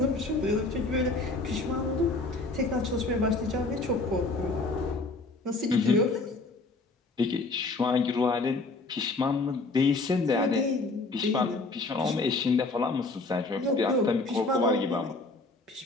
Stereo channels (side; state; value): right; quieter; 3.4 dB